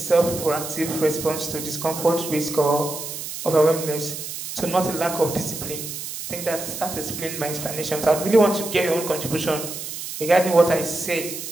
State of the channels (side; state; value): right; noise; hiss, 8 dB below the sound